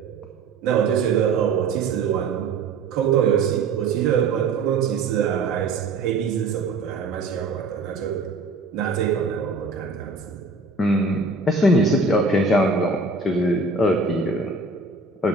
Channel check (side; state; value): left; quieter; 3.7 dB